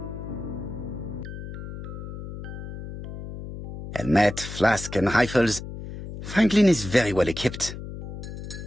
Helmet, flask, and rifles. Franklin is very well equipped.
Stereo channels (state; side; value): noise; left; hum, 9 dB below the sound